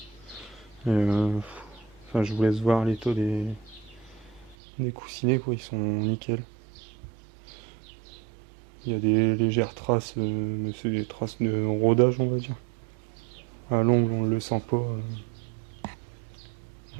Enfin, je vous laisse voir l'état des coussinets, quoi. Ils sont nickel. Il y a des légères traces, mais c'est des traces de rodage, on va dire. À l'ongle, on ne le sent pas.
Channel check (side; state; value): left; drops out; at 4.5 s